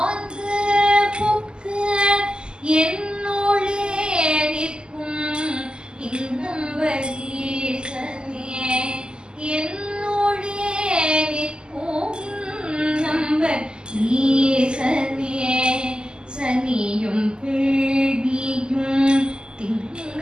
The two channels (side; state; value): left; late; 0.047 ms